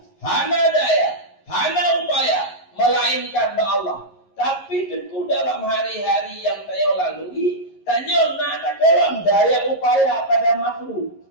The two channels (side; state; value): right; late; 11 ms